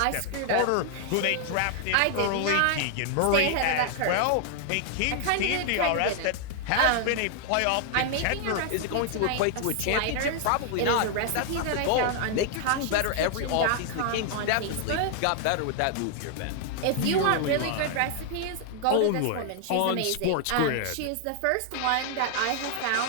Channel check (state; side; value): different; both; correlation 0.00